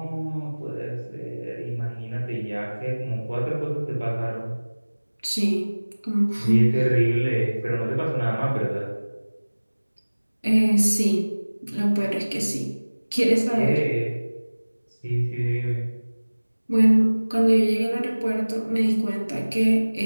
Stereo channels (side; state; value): both; inverted; correlation -1.00